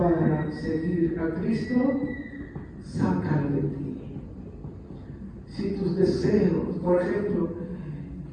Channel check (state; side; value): identical; both; correlation 1.00